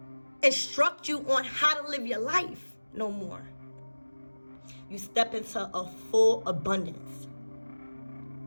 instruct you on how to live your life no more. You step into a full abundance.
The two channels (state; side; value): inverted; both; correlation -1.00